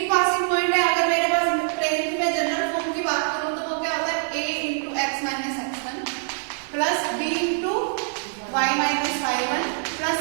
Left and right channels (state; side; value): silent; left; digital silence